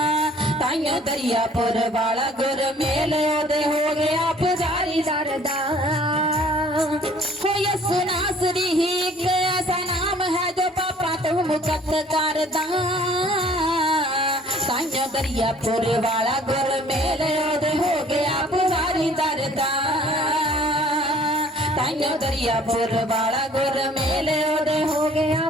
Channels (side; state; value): both; normal; correlation 0.54